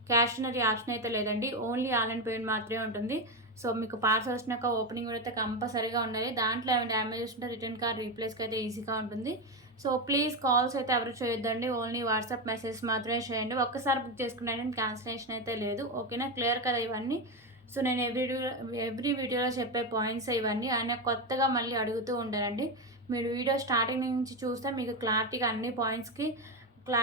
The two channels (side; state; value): both; normal; correlation 0.13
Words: Cash on option అయితే లేదండి, ఓన్లీ ఆన్లైన్ పేమెంట్ మాత్రమే ఉంటుంది. సో మీకు పార్సల్ వచ్చినాక ఓపెనింగ్ అయితే కంపల్సరీగా ఉండాలి. దాంట్లో ఏమైనా డ్యామేజ్ ఉంటే రిటర్న్ కార్డ్ రీప్లేస్కి అయితే ఈజీగా ఉంటుంది. సో ప్లీజ్ కాల్స్ అయితే ఎవరు చేయొద్దండి, ఓన్లీ వాట్సాప్ మెసేజ్ మాత్రమే చేయండి. ఒక్కసారి బుక్ చేసుకున్నాను, క్యాన్సిలేషన్ అయితే లేదు, ఓకేనా? క్లియర్ కదా ఇవన్నీ. సో నేను ఎవ్రీ వీడియోలో చెప్పే పాయింట్స్ ఇవన్నీ. ఆయన కొత్తగా మళ్ళీ అడుగుతూ ఉంటారండి. మీరు వీడియో స్టార్టింగ్ నుంచి చూస్తే మీకు క్లారిటీగా అన్ని పాయింట్స్కి